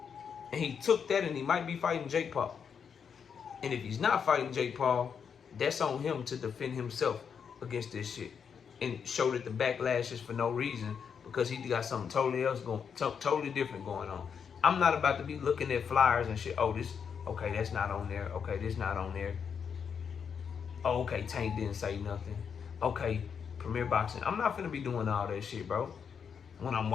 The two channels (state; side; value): quieter; right; 6.9 dB